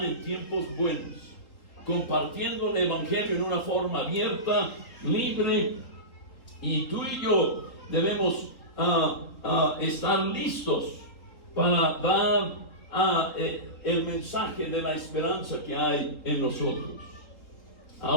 en tiempos buenos, compartiendo el Evangelio en una forma abierta, libre, y tú y yo debemos estar listos para dar el mensaje de la esperanza que hay en nosotros.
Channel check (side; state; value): right; late; 3.9 ms